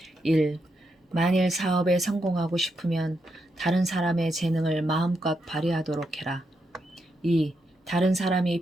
1. 만일 사업에 성공하고 싶으면 다른 사람의 재능을 마음껏 발휘하도록 해라. 2. 다른 사람이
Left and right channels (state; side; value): normal; both; correlation 0.82